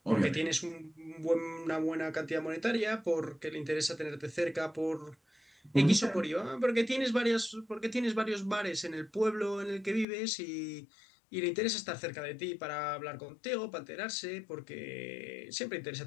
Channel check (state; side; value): drops out; right; at 10.1 s